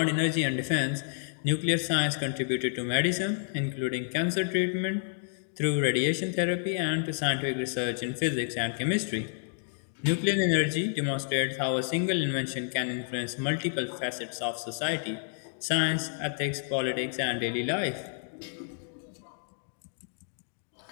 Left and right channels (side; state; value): right; silent; digital silence